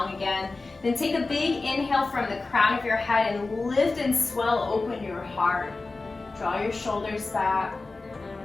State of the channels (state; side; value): quieter; right; 3.6 dB